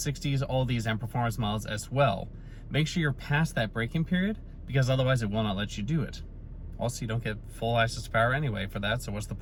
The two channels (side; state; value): both; identical; correlation 1.00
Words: all these M Performance models as well. Make sure you're past that braking period because otherwise it will not let you do it. Also, you don't get full access to power anyway for that, so what's the